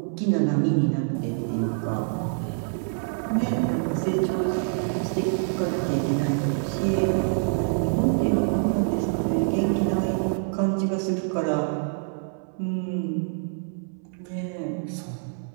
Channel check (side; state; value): left; silent; 61 dB below the other